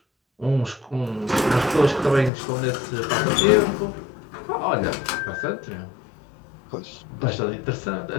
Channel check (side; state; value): right; drops out; at 2.3 s